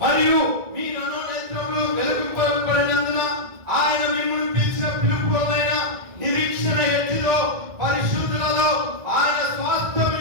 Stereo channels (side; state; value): left; late; 1.9 ms